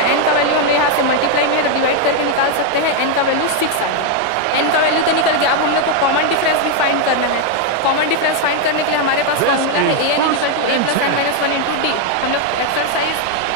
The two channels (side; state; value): both; different; correlation 0.01